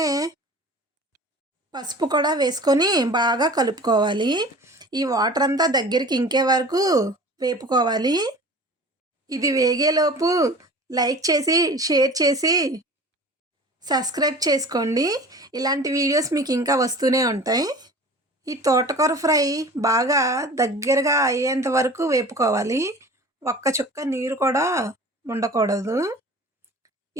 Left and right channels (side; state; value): both; normal; correlation 0.41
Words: పసుపు కూడా వేసుకొని బాగా కలుపుకోవాలి. ఈ వాటర్ అంతా దగ్గరికి ఇంకే వరకు వేపుకోవాలి. ఇది వేగేలోపు లైక్ చేసి, షేర్ చేసి, సబ్స్క్రైబ్ చేసుకోండి. ఇలాంటి వీడియోస్ మీకు ఇంకా వస్తూనే ఉంటాయి. ఈ తోటకూర ఫ్రై బాగా దగ్గరగా అయ్యేంత వరకు వేపుకోవాలి. ఒక్క చుక్క నీరు కూడా ఉండకూడదు.